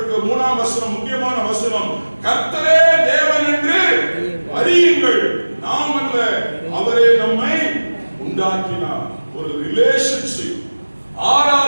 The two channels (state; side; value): inverted; both; correlation -1.00